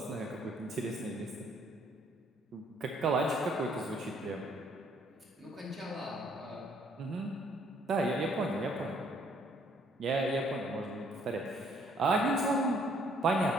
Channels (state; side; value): normal; both; correlation 0.64